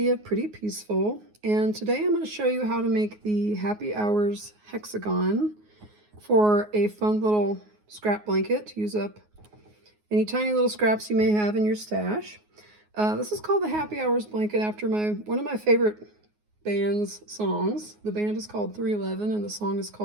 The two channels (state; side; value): late; left; 9.5 ms